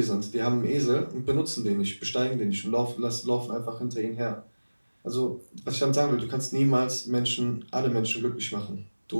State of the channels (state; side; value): inverted; both; correlation -1.00